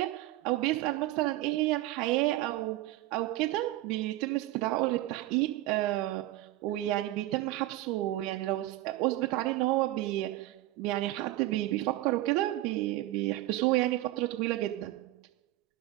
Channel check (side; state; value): left; quieter; 16.6 dB